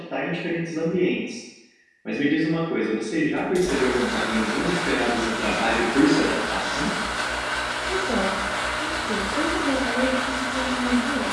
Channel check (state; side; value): identical; both; correlation 1.00